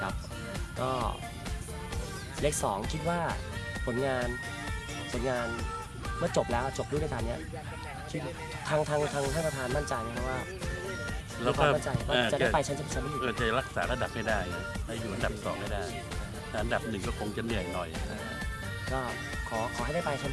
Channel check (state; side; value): identical; both; correlation 1.00